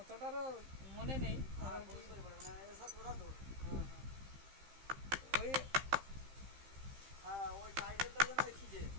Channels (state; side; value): late; left; 15 ms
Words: মনে নেই। ওই ওই টাইটেলটা যেন লিখিছে